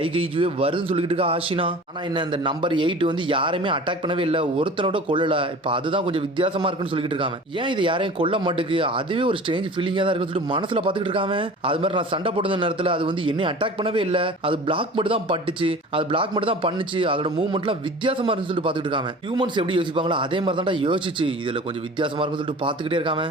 கைஜுவே வருதுன்னு சொல்லிக்கிட்டு இருக்கா ஆஷினா. ஆனா என்ன இந்த நம்பர் 8 வந்து யாரையுமே அட்டாக் பண்ணவே இல்லை, ஒருத்தனோட கொல்லல. இப்ப அதுதான் கொஞ்சம் வித்தியாசமா இருக்குன்னு சொல்லிக்கிட்டு இருக்காங்க. ஏன் இது யாரையும் கொல்ல மாட்டுக்கு, அதுவே ஒரு ஸ்ட்ரேஞ்ச் ஃபீலிங்கா தான் இருக்குன்னு சொல்லிட்டு மனசுல பாத்துக்கிட்டு இருக்காங்க. அது மாதிரி நான் சண்டை போடுற நேரத்துல அது வந்து என்னை அட்டாக் பண்ணவே இல்லை, அது பிளாக் மட்டும் தான் பட்டுச்சு, அது பிளாக் மட்டும் தான் பண்ணுச்சு, அதோட மூவ்மெண்ட்லாம் வித்தியாசமா இருக்குன்னு சொல்லிட்டு பாத்துக்கிட்டு இருக்காங்க. ஹியூமன்ஸ் எப்படி யோசிப்பாங்களோ அதே மாதிரி தான் யோசிச்சு இதுல கொஞ்சம் வித்தியாசமா இருக்குன்னு சொல்லிட்டு பாத்துக்கிட்டே இருக்காங்க.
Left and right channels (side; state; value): both; normal; correlation 0.40